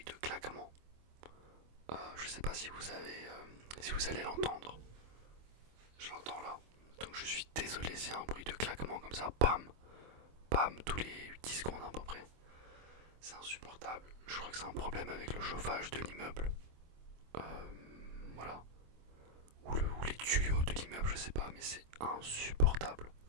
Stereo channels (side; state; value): left; late; 25 ms